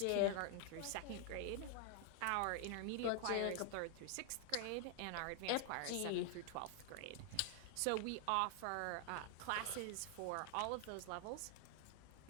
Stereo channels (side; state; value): both; different; correlation 0.00